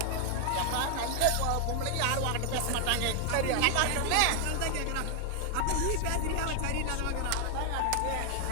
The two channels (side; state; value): both; different; correlation 0.00